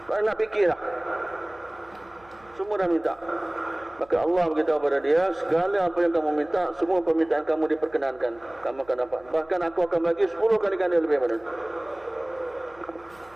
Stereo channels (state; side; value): noise; right; hum, 27 dB below the sound